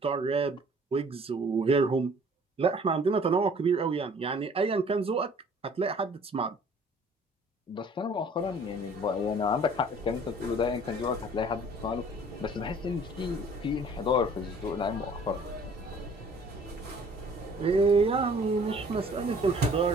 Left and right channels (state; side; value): normal; both; correlation 0.53